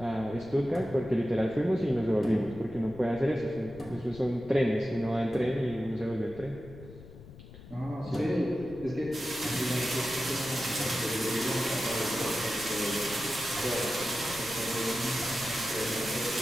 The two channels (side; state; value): left; noise; rumble, 17 dB below the sound